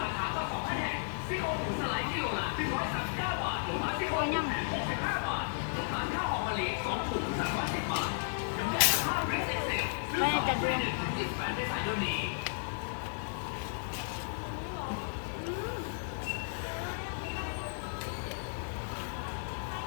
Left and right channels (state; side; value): silent; right; digital silence